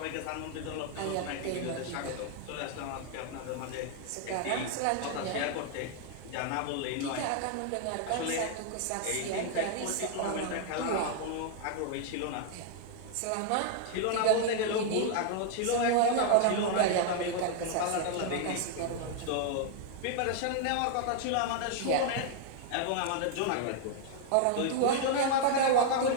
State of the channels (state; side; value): different; both; correlation 0.00